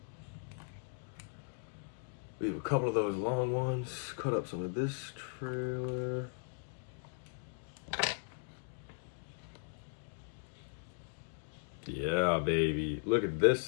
We have a couple of those long ones. Cut up some of this trailer. Yeah, baby. Look at this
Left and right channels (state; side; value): silent; right; digital silence